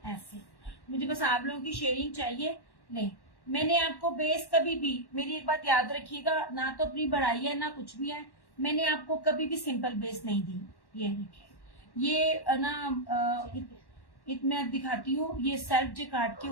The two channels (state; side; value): late; right; 1.1 ms